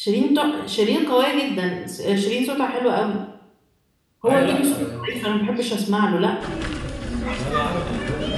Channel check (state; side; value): identical; both; correlation 1.00